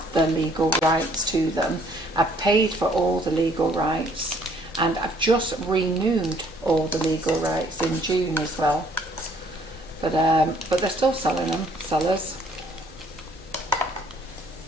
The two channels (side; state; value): both; normal; correlation 0.62